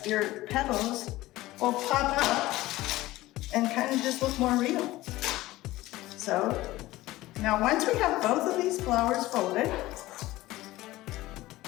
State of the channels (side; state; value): right; quieter; 17.6 dB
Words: your petals will pop up and kind of just look more real. So now once we have both of these flowers folded,